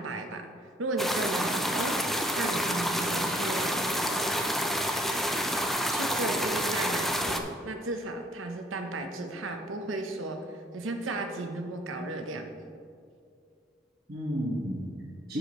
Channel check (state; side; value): normal; both; correlation 0.61